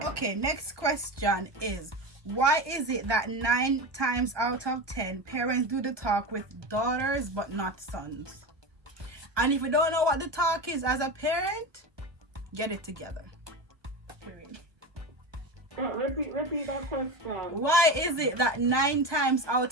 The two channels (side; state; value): left; late; 1.2 ms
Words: Okay, next question is, why is it that 9 times out of 10 parents do the talk with daughters but not sons? And if you don't know what the talk is as a parent, get it together. Period. Repeat that question. Why is it that 9 times